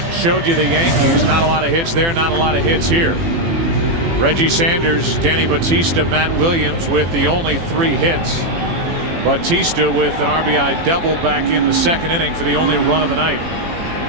showed you the Yankees, not a lot of hits there, not a lot of hits here. Reggie Sanders, Danny Batista, Matt Williams with the only 3 hits. Batista with an RBI double back in the 2nd inning for the only run of the night.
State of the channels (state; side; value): late; left; 18 ms